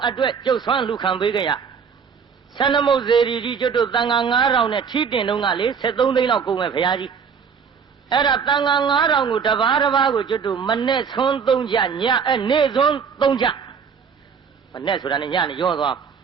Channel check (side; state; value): left; quieter; 6.4 dB